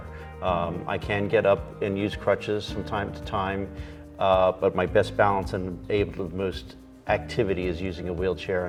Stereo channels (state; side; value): identical; both; correlation 1.00